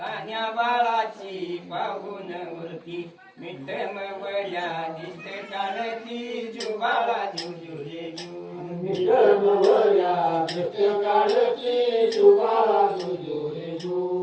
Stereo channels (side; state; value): both; identical; correlation 1.00